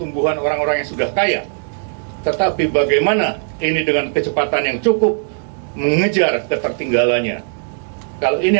orang-orang yang sudah kaya, tetapi bagaimana ini dengan kecepatan yang cukup mengejar ketertinggalannya. Kalau ini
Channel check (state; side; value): silent; left; 60 dB below the other